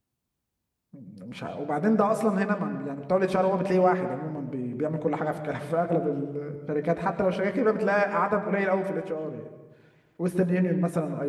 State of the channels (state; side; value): identical; both; correlation 1.00